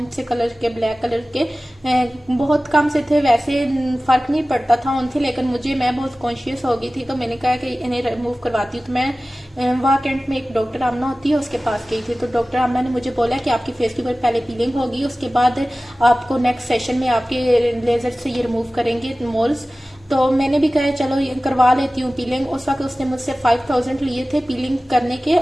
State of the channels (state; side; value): normal; both; correlation 0.97